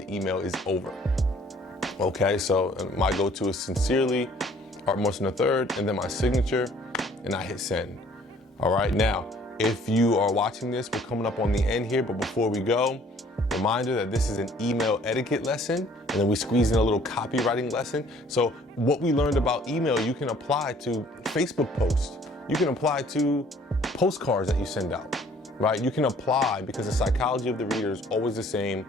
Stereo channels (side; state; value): both; normal; correlation 0.57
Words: email is over. Okay, so my go-to is sincerely, Art Morrison III, and then my signature, and I hit send. All right, now, if you are watching this, we're coming up on the end here, but before we go, reminder that this is an email etiquette lesson, and then we squeeze in a little copywriting lesson. So what we learned about email, you can apply to Facebook posts. You can apply to postcards that you send out. Right? You can apply because the psychology of the reader is always the same,